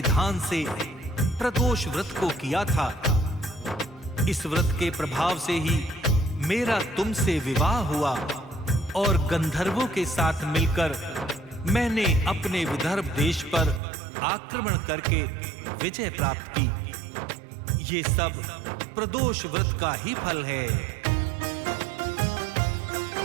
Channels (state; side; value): drops out; left; at 13.8 s